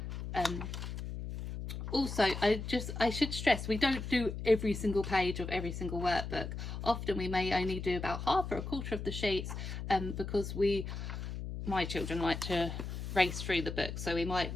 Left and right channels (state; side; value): noise; left; hum, 6 dB below the sound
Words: Also, I should stress, we don't do every single page of every single workbook. Often we may only do about half or a quarter of the sheets, because my children like to race through the book, so we might